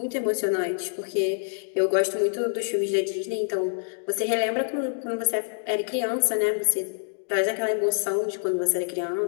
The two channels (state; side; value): silent; right; digital silence